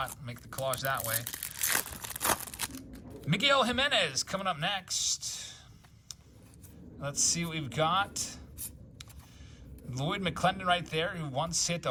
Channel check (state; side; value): identical; both; correlation 1.00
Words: Make the collage that way. Miguel Jimenez coming up next. Let's see what we've got. Lloyd McClendon right there, who once hit